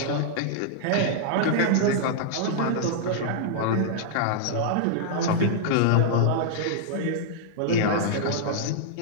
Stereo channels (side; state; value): both; different; correlation -0.02